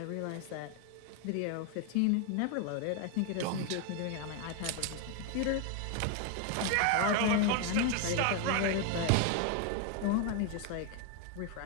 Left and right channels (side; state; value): both; different; correlation 0.01